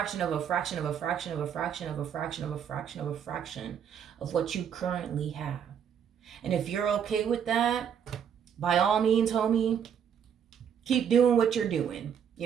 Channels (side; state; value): left; quieter; 8.2 dB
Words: of a fraction of a fraction of a fraction of a fraction of a fraction of a fraction of what you currently have. And if you're okay with that, by all means, homie, keep doing what you're doing.